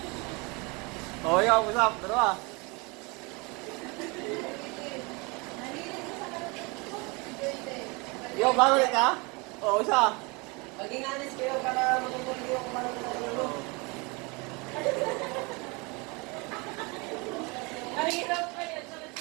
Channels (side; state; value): left; quieter; 28.2 dB